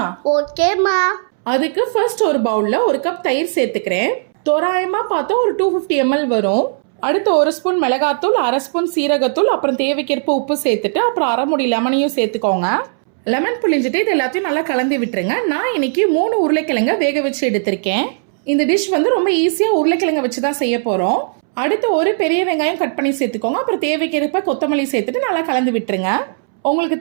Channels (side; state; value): left; silent; 68 dB below the other